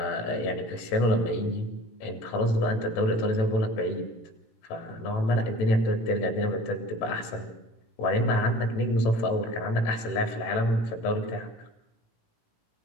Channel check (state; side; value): late; right; 18 ms